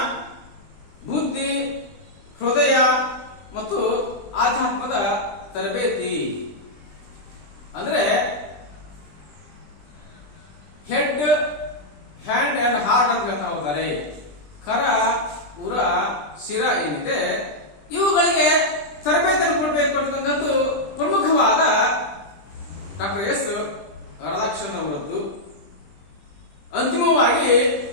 ಬುದ್ಧಿ, ಹೃದಯ ಮತ್ತು ಆಧ್ಯಾತ್ಮದ ತರಬೇತಿ. ಅಂದ್ರೆ ಹೆಡ್, ಹ್ಯಾಂಡ್ ಅಂಡ್ ಹಾರ್ಟ್ ಅಂತ ಹೇಳ್ತಾ ಹೋಗ್ತಾರೆ. ಕರ, ಉರ, ಶಿರ ಏನಿದೆ ಇವುಗಳಿಗೆ ತರಬೇತಿಯನ್ನು ಕೊಡಬೇಕು ಅಂತಕ್ಕಂಥದ್ದು ಪ್ರಮುಖವಾದ ಡಾಕ್ಟರ್ ಎಸ್ ರಾಧಾಕೃಷ್ಣನ್ ಅವರದ್ದು. ಅಂತಿಮವಾಗಿ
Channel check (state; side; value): late; right; 20 ms